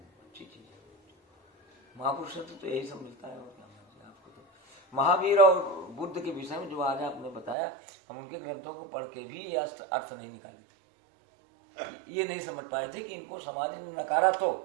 अच्छी चीज़ है। महापुरुष तो यही सब मिलता है। और क्या आपको तो महावीर और बुद्ध के विषय में जो आज आपने बताया, हम उनके ग्रंथों को पढ़ के भी ये अर्थ नहीं निकाले थे, ये नहीं समझ पाए थे कि इनको समाज ने नकारा तो,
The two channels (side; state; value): left; drops out; at 7.6 s